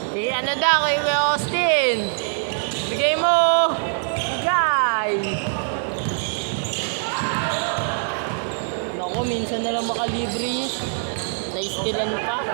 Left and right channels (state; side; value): silent; left; digital silence